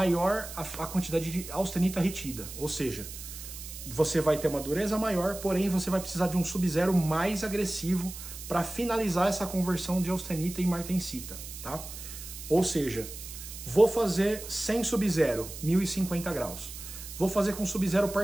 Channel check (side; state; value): right; noise; hiss, 11 dB below the sound